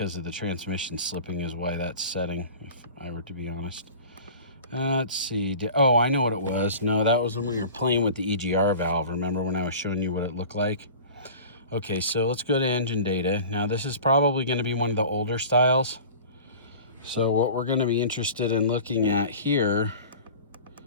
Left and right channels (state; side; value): inverted; both; correlation -0.39